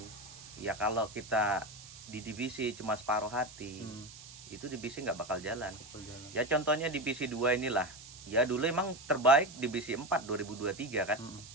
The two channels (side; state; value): right; noise; hiss, 16 dB below the sound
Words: ya. Kalau kita di divisi cuma separuh hati itu divisi nggak bakal jalan. Berjalan. Ya contohnya divisi 2 inilah. Ya dulu emang terbaik divisi 4 2023 kan.